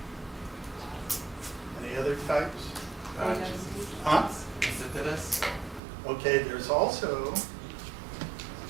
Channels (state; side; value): drops out; left; at 5.8 s